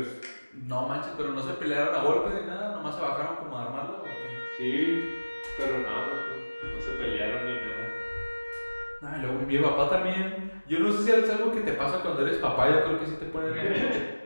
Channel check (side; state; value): both; inverted; correlation -1.00